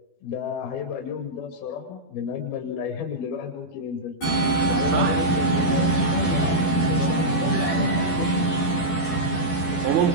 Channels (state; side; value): late; right; 12 ms